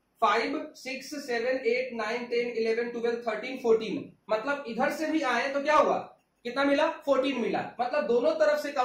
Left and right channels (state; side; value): identical; both; correlation 1.00